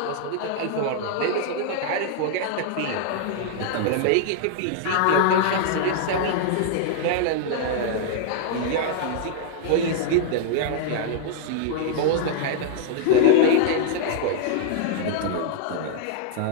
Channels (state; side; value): different; both; correlation -0.01